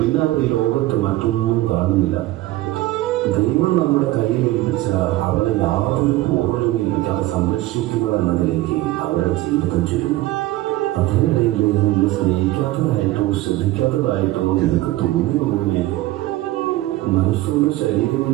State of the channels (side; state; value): left; quieter; 17.0 dB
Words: അവർ ഈ ലോകത്ത് മറ്റൊന്നും കാണുന്നില്ല. ദൈവം നമ്മുടെ കയ്യിൽ ഏൽപ്പിച്ച അവരെ യാതൊരു പൂർണ്ണതയില്ലാതെ സംരക്ഷിക്കുക എന്നതിലേക്ക് അവരുടെ ജീവിതം ചുരുങ്ങും. അതിനിടയിൽ നിന്നെ സ്നേഹിക്കാത്തതായിട്ടോ ശ്രദ്ധിക്കാത്തതായിട്ടോ നിനക്ക് തോന്നുന്നതിനെ മനസ്സുകൊണ്ട് ശരീരം